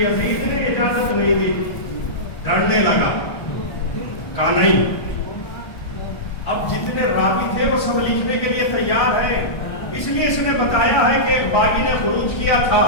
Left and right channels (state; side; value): late; right; 1.2 ms